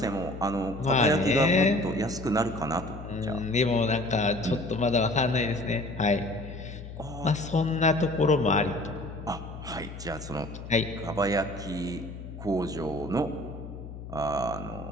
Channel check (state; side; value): noise; left; hum, 11 dB below the sound